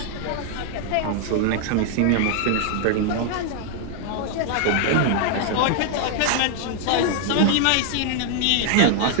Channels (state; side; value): different; both; correlation 0.00